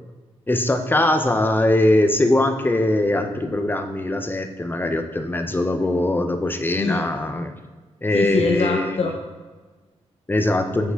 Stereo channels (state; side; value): normal; both; correlation 0.81